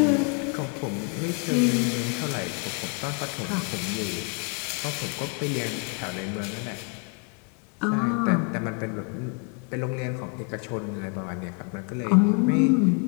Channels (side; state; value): right; quieter; 37.1 dB